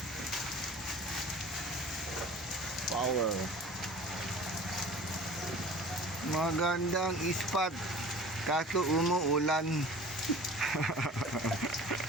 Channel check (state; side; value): normal; both; correlation 0.42